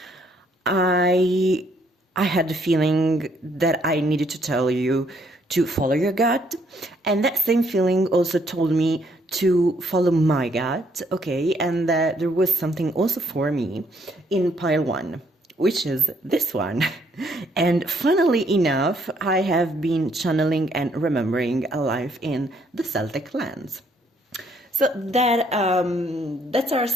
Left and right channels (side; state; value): both; normal; correlation 0.68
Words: I had the feeling that I needed to tell you to follow your gut, and that same feeling also told me to follow my gut, okay, and that there was something also for me in pile 1, which is this one. And funnily enough, I have been channeling and remembering a life in the Celtic lands. So that that's our